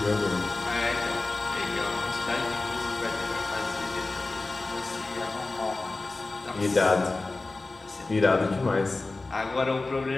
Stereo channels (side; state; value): right; quieter; 3.3 dB